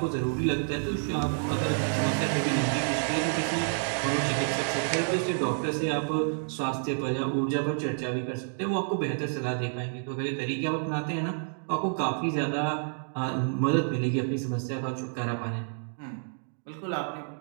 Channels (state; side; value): silent; left; digital silence